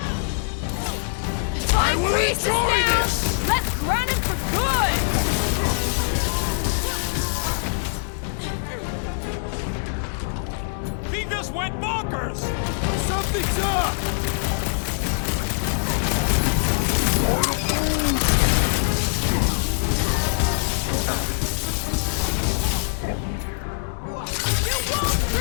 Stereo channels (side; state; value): right; silent; digital silence